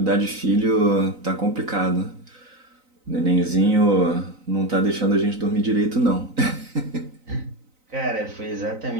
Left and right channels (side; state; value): left; late; 3.9 ms